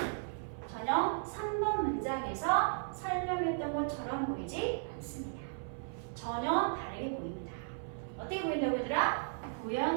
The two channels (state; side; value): silent; left; 54 dB below the other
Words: 전혀 3번 문장에서 설명했던 것처럼 보이지 않습니다. 전혀 다르게 보입니다. 어떻게 보인다고 얘들아?